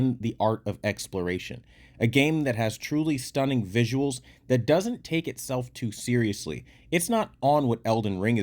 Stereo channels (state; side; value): identical; both; correlation 1.00